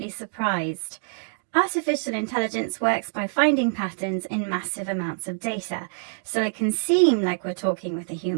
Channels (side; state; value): left; silent; digital silence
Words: surprised. Artificial intelligence works by finding patterns in massive amounts of data, so it can seem like we're talking with a